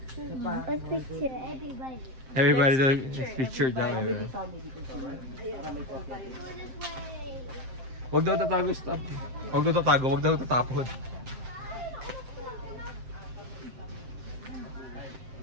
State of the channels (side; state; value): left; late; 7.7 ms